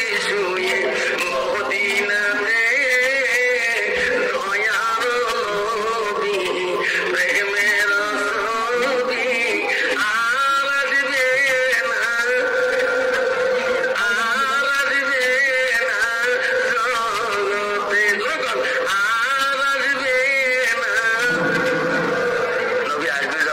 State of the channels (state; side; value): identical; both; correlation 1.00